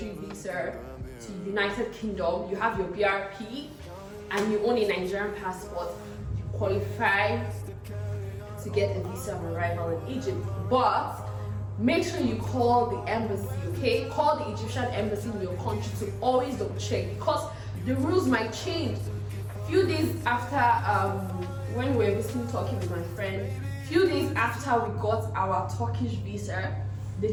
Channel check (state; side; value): identical; both; correlation 1.00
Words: visa to United Kingdom, you have your BRP, and you own a Nigerian passport, you qualify to get a visa on arrival in Egypt. But make sure you call the embassy, okay? Call the Egyptian embassy in your country to always double check, because the rules might change. A few days after when we were visiting Turkey with my friend, few days after we got our Turkish visa, they